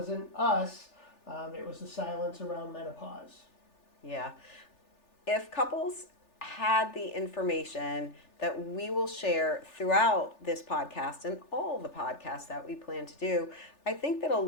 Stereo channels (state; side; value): late; right; 3.4 ms